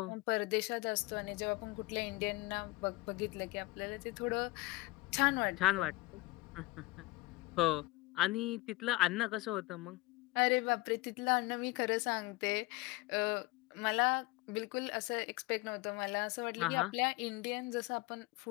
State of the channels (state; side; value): quieter; right; 21.0 dB